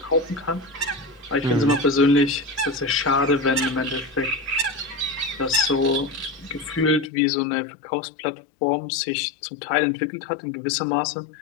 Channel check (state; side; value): drops out; right; at 7.1 s